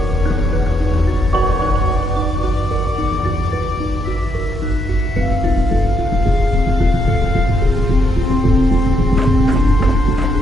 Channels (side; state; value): both; normal; correlation 0.76